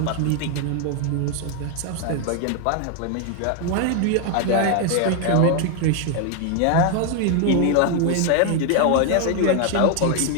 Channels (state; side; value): different; both; correlation 0.01